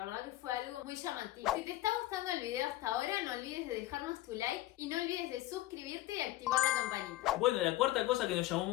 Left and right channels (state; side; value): quieter; right; 16.2 dB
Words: verdad que fue algo muy llamativo. Si te está gustando el video hasta ahora, no olvides de dejarnos tu like y no olvides de suscribirte y activar la campanita. Bueno, la cuarta cosa que nos llamó